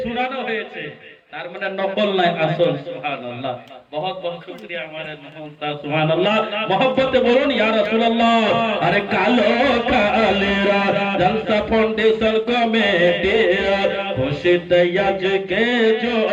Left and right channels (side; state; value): both; identical; correlation 1.00